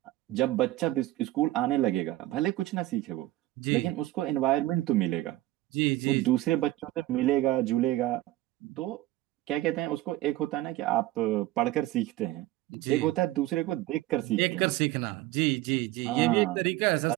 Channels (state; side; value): quieter; left; 16.4 dB